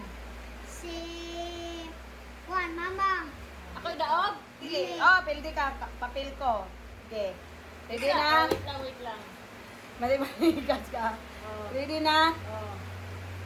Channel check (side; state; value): both; identical; correlation 1.00